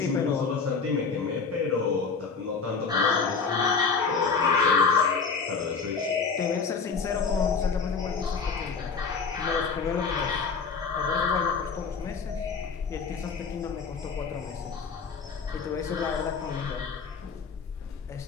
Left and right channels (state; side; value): quieter; right; 5.2 dB